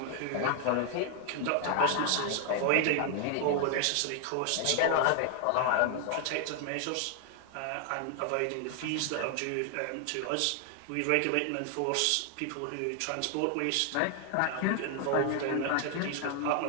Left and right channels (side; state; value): both; different; correlation 0.00